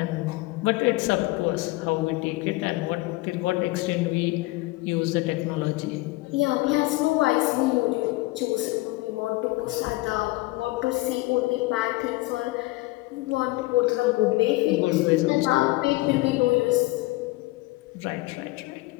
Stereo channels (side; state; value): right; quieter; 21.2 dB